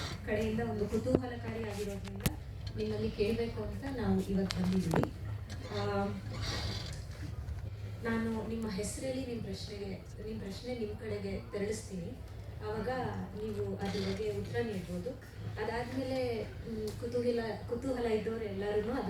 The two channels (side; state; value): both; identical; correlation 1.00